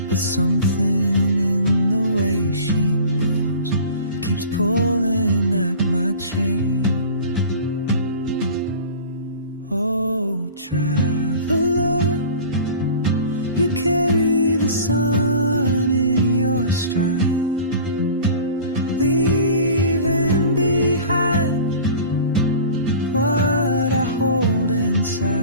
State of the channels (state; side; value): inverted; both; correlation -0.41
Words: But something in the way she moves keeps pulling at my chain. Oh, traveler, you carry the sun in your stride, leaving behind what I hold